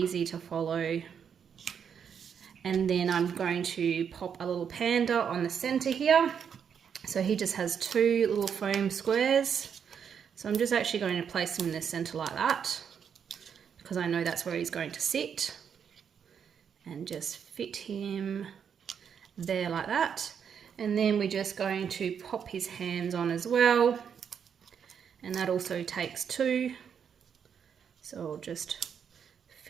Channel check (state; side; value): quieter; left; 7.5 dB